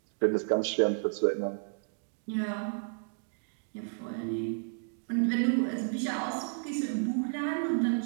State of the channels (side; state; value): left; silent; digital silence